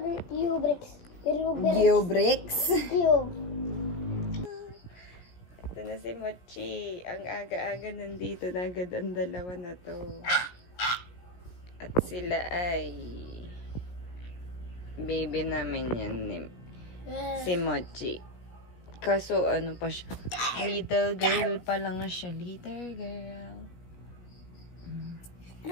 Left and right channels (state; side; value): late; right; 17 ms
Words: Ubrix. Geobricks. Cube. Ito na si Mochi. Ang aga-aga nandito na agad ang dalawa na to. At sila ay baby namin yan ni si Mochi. Kaso ano pa siya? Little girl pa lang na siya. Little girl.